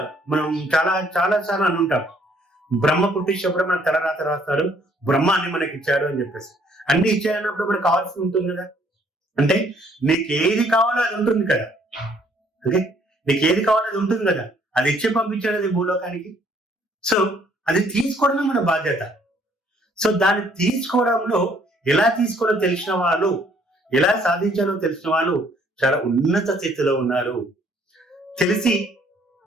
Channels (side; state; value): both; normal; correlation 0.63